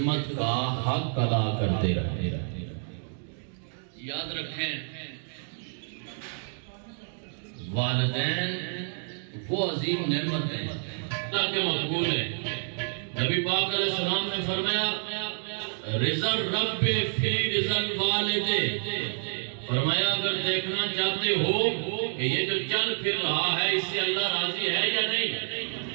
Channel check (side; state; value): left; silent; 59 dB below the other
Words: کا حق ادا کرتے رہے۔ یاد رکھیں والدین وہ عظیم نعمت ہیں اللہ کے مقبول ہیں۔ نبی پاک علیہ السلام نے فرمایا رضا الرب فی رضا الوالد، فرمایا اگر دیکھنا چاہتے ہو کہ یہ جو چل پھر رہا ہے اس سے اللہ راضی ہے یا نہیں،